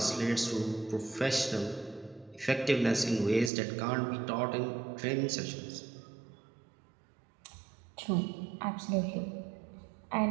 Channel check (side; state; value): left; drops out; at 3.5 s